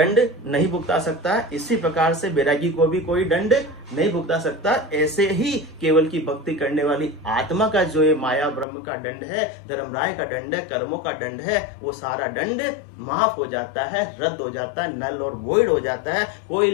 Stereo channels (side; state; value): right; drops out; at 8.7 s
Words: नहीं भुगता सकता है, इसी प्रकार से बैरागी को भी कोई दंड नहीं भुगता सकता। ऐसे ही केवल की भक्ति करने वाली आत्मा का जो ये माया ब्रह्म का दंड है, धर्मराय का दंड है, कर्मों का दंड है, वो सारा दंड माफ हो जाता है, रद्द हो जाता है, नल और वॉइड हो जाता है, कोई